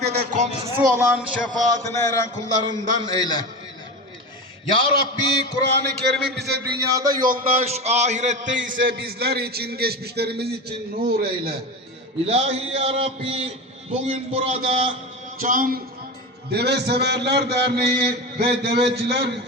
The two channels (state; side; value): normal; both; correlation 0.25